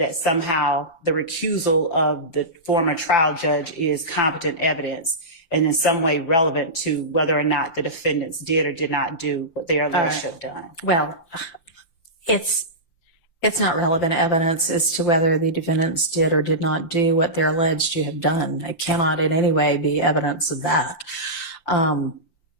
somehow the recusal of the former trial judge is competent evidence and in some way relevant to whether or not the defendants did or did not do what they are alleged to have done. Well, it's not relevant evidence as to whether the defendants did or did not do what they're alleged to have done. It cannot in any way be evidence of that. I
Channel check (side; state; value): right; late; 5.8 ms